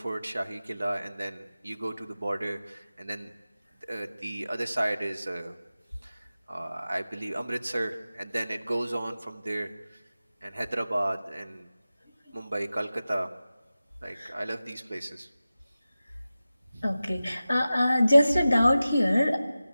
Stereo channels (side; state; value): both; inverted; correlation -0.95